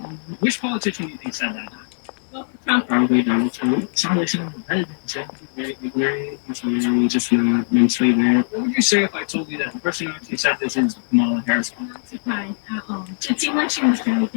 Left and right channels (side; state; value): right; silent; 65 dB below the other